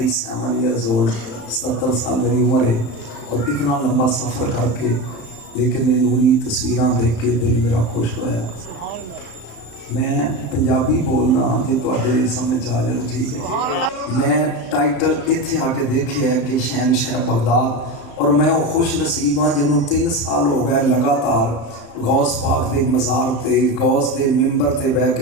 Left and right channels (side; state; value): right; late; 35 ms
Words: ایئرز اولڈ، 77 سال میری عمر ہے، اور اتنا لمبا سفر کر کے لیکن یہ نوری تصویراں دیکھ کے دل میرا خوش ہویا۔ میں پنجابی بولنا جی تواڈے سمجھ آ جائے تو ٹھیک ہے۔ میں ٹائٹل اتھے آ کے دیکھے ہے کہ شہنشاہ بغداد، اور میں وہ خوش نصیب ہاں جنہوں 3 سال ہو گئے لگاتار غوث پاک دے مزار تے غوث دے ممبر تے بہ